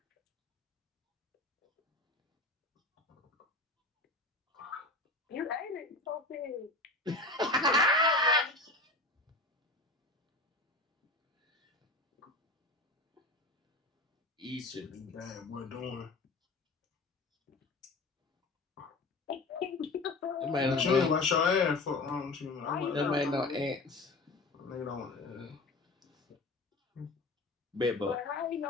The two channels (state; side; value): quieter; right; 3.1 dB